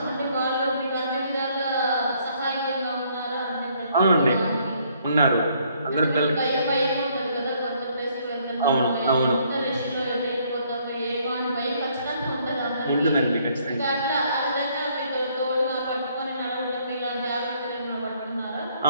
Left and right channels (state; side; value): inverted; both; correlation -0.66